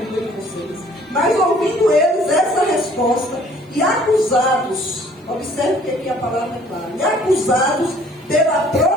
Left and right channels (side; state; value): both; normal; correlation 0.57